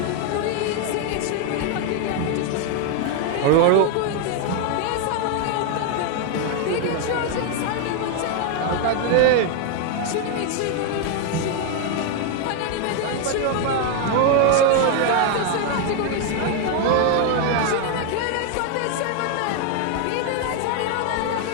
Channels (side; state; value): both; different; correlation 0.01